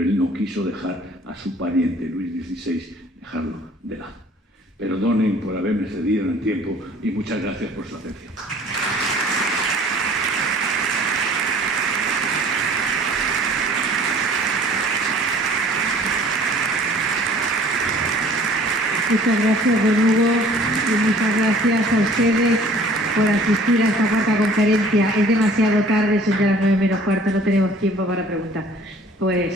no quiso dejar a su pariente Luis XVI, dejarlo de lado. Perdonen por haberme cedido en el tiempo y muchas gracias por su atención. Muchas gracias, don Hugo, y muchas gracias a ustedes por asistir a esta cuarta conferencia. Es demasiado tarde, son ya las 9:45, no tenemos tiempo para preguntar.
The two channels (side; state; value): both; normal; correlation 0.52